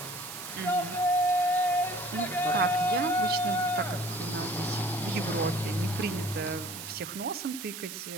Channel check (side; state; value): right; noise; hiss, 9 dB below the sound